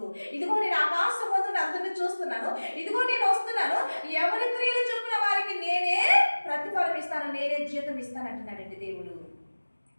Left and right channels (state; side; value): inverted; both; correlation -1.00